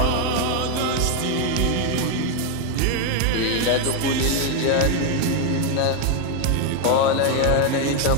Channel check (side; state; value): both; different; correlation 0.01